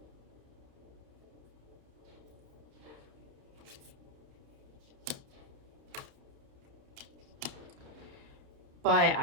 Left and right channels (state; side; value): late; left; 30 ms